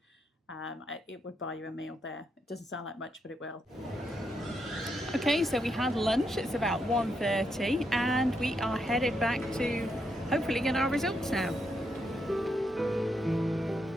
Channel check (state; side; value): normal; both; correlation 0.80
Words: it would buy you a meal there. It doesn't sound like much, but it will. Okay, so we had lunch. It's about 1:30 and we are headed back to hopefully get our results now.